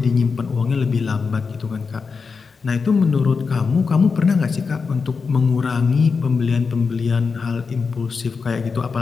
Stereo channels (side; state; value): right; quieter; 5.0 dB